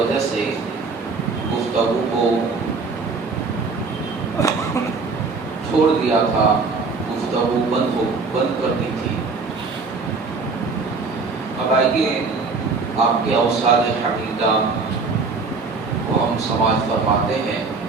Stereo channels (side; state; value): left; quieter; 4.3 dB